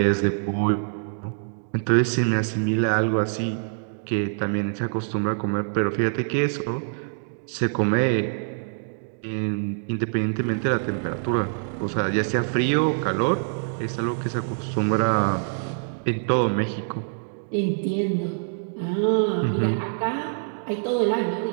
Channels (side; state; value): left; silent; digital silence